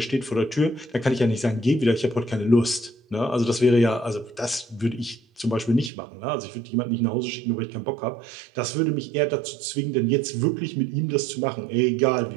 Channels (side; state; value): left; drops out; at 5.9 s